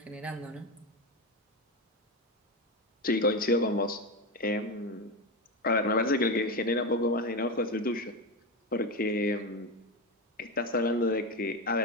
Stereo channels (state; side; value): normal; both; correlation 0.16